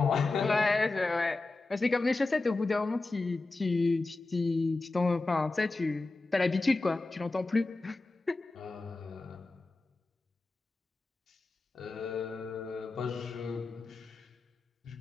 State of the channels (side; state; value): right; quieter; 3.3 dB